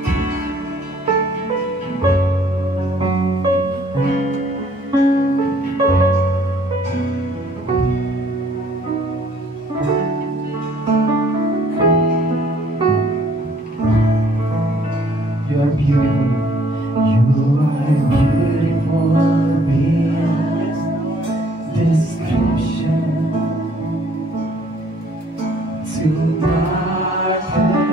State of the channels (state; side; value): normal; both; correlation 0.61